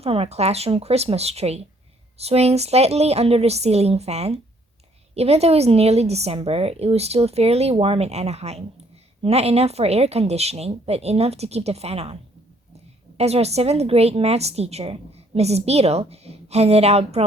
our classroom Christmas tree, swaying slightly under the ceiling fan. Even though it was nearly December, it was still fairly warm in Anaheim. Not enough for air conditioning, but enough to keep the fan on. As our 7th grade maths teacher, Mrs. Beadle, handed out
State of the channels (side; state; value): both; normal; correlation 0.64